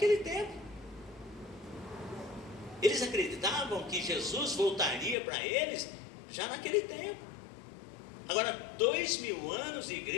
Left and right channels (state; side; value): drops out; right; at 5.2 s